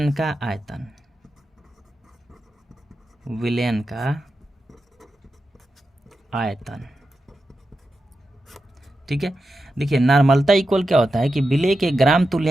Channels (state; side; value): normal; both; correlation 0.90